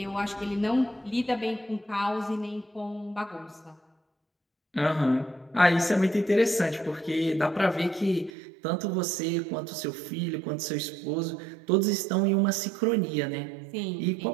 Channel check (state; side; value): drops out; left; at 8.3 s